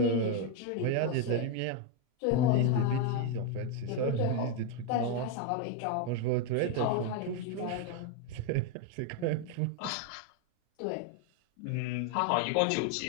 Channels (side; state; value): both; different; correlation 0.01